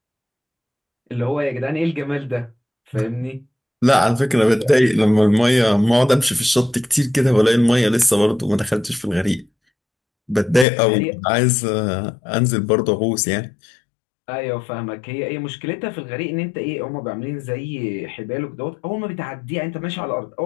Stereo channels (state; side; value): drops out; right; at 10.7 s